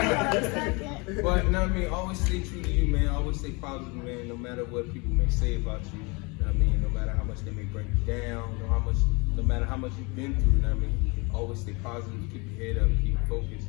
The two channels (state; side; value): quieter; right; 28.5 dB